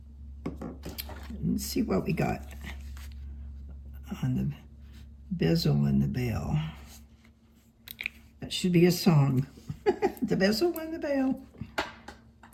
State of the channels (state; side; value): identical; both; correlation 1.00